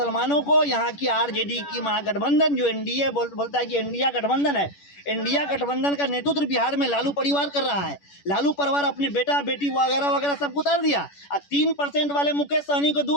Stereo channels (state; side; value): late; right; 10 ms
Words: को यहाँ की आरजेडी की महागठबंधन, जो एनडीए बोलता है कि इंडिया गठबंधन है, इंडिया गठबंधन का नेतृत्व बिहार में लालू परिवार कर रहा है। लालू परिवार अपने बेटा बेटी वगैरह वगैरह सबको उतार दिया और 3% वाले मुकेश सहनी को